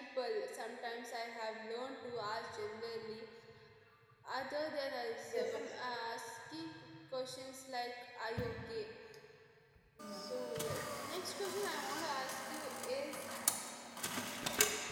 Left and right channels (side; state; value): both; identical; correlation 1.00